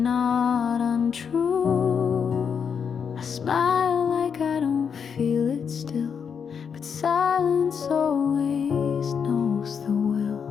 untrue. I smile like I don't feel it still, but silence always knows the will.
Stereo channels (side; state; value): right; quieter; 6.8 dB